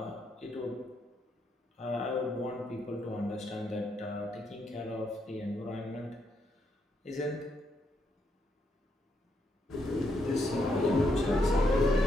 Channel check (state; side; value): normal; both; correlation 0.78